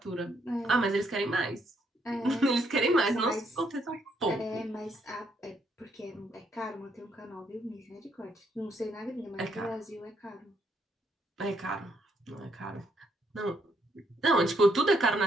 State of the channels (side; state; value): both; normal; correlation 0.73